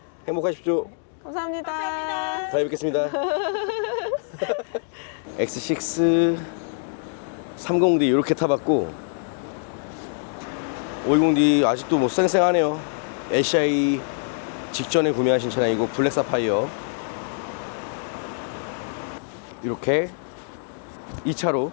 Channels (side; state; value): right; silent; digital silence